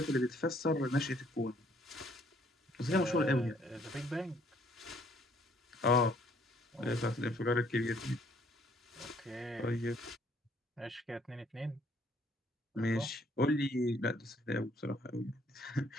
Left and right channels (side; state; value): both; normal; correlation 0.64